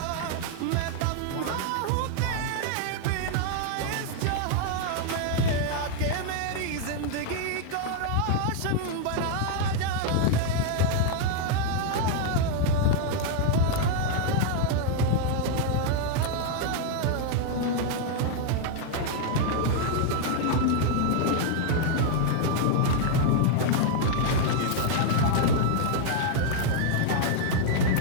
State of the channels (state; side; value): different; both; correlation 0.00